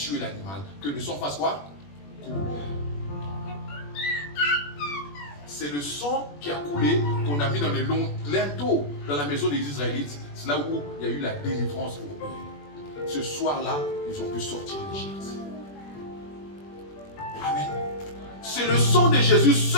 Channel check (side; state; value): right; late; 21 ms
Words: l'animal. Que le sang fasse quoi? Couler. C'est le sang qui a coulé qu'on a mis dans les linteaux dans la maison des Israélites. C'est là où il y a eu la délivrance pour eux. Ce soir-là, ils ont pu sortir d'Égypte. Amen. C'est le sang de Jésus